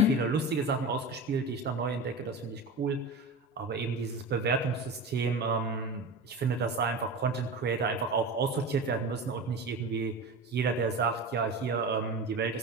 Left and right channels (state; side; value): normal; both; correlation 0.29